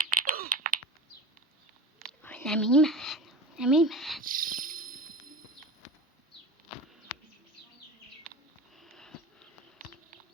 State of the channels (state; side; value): normal; both; correlation 0.31